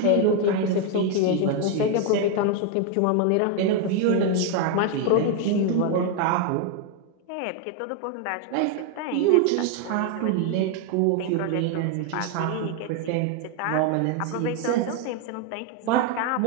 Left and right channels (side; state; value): both; different; correlation 0.01